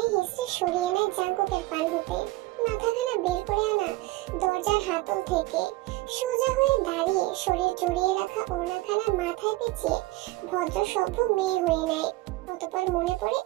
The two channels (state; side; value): quieter; left; 19.5 dB